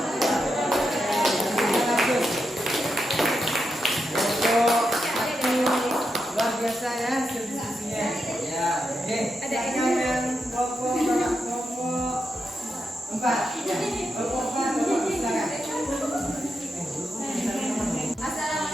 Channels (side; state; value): both; normal; correlation 0.86